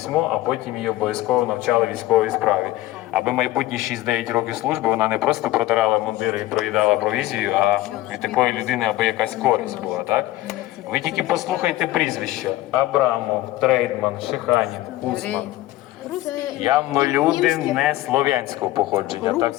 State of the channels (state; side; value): quieter; right; 16.3 dB